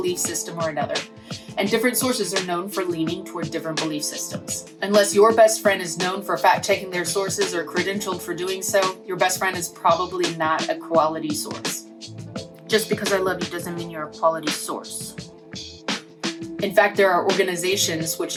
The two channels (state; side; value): identical; both; correlation 1.00